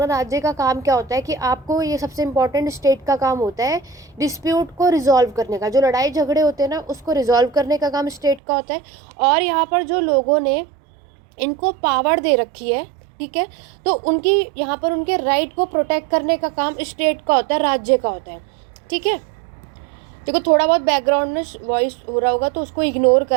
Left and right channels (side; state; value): left; drops out; at 8.4 s